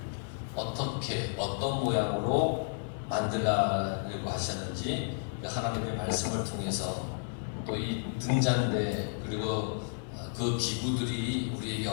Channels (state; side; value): silent; right; digital silence